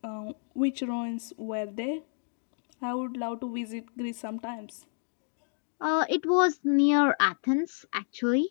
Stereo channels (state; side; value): silent; right; 57 dB below the other